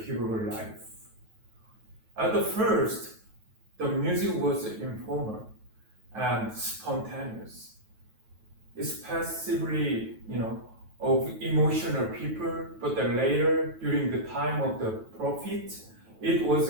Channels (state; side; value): late; left; 9.2 ms